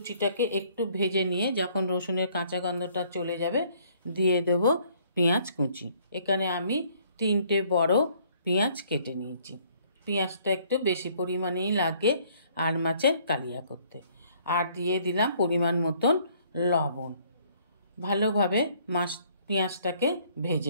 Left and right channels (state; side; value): inverted; both; correlation -0.62